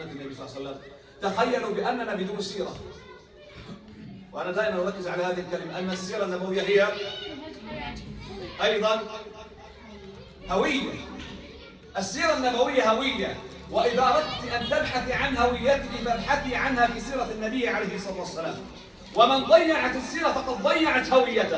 النبي صلى الله عليه وسلم، تخيلوا بأننا بدون سيرة. وأنا دائما أركز على هذه الكلمة، أن السيرة النبوية هي أيضا هوية. السيرة النبوية هوية، وإذا أردت أن تبحثي عن هويتك فابحثي عنها في سيرة النبي عليه الصلاة والسلام. ومن ضيعت السيرة فقد ضيعت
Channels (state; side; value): identical; both; correlation 1.00